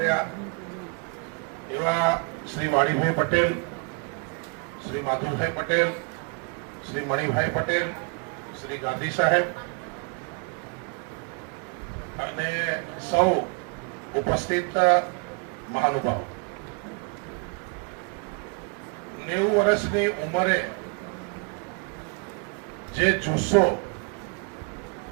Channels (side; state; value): left; quieter; 35.7 dB